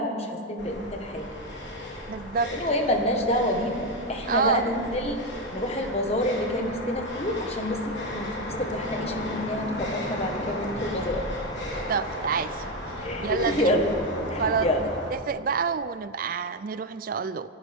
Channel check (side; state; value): both; normal; correlation 0.09